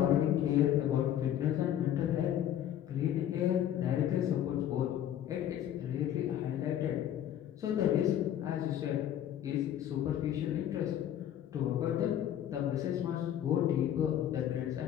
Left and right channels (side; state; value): right; quieter; 10.9 dB